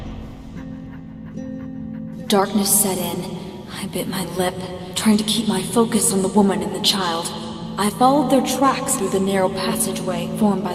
Darkness set in. I bit my lip, trying to keep my focus on the woman and the child. I followed their tracks through the narrow passageway formed by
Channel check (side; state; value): both; identical; correlation 1.00